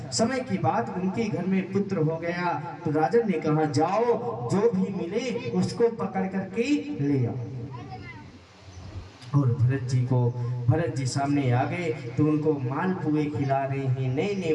समय की बात, उनके घर में पुत्र हो गया तो राजन ने कहा जाओ जो भी मिले उसको पकड़ करके ले आओ। और भरत जी सामने आ गए तो उनको मालपुए खिला रहे हैं, नए नए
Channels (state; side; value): identical; both; correlation 1.00